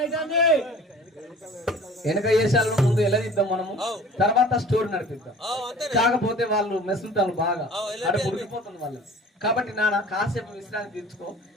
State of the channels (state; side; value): normal; both; correlation 0.46